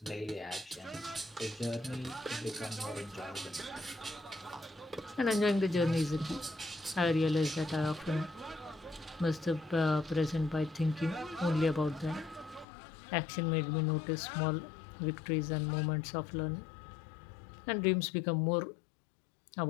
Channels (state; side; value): drops out; right; at 12.7 s